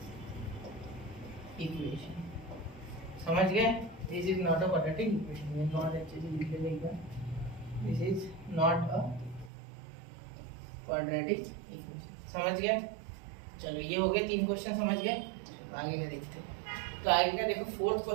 equation. समझ गए? This is not a quadratic equation. ये नॉट अच्छे से लिख लेंगे एक बार, this is not a quadratic equation. समझ गए? चलो ये हो गए 3 क्वेश्चन, समझ गए? आगे का देखते हैं। तो आगे का देखो फोर्थ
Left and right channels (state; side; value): drops out; left; at 9.5 s